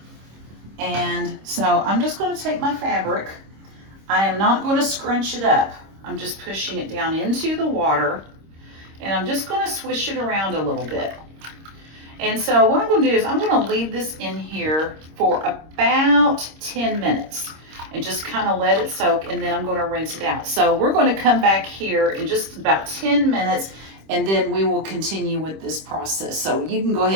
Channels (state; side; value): late; left; 26 ms